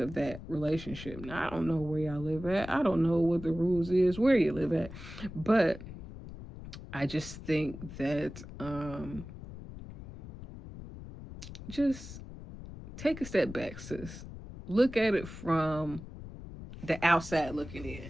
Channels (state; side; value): noise; left; rumble, 13 dB below the sound